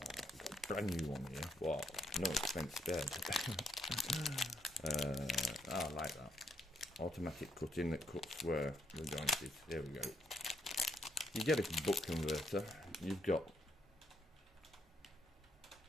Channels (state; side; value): normal; both; correlation 0.76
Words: I've got a brand new one here. Wow, no expense spared. I like that. Automatic cutting that cuts where the joint is. There we go. You get a buck converter. You've got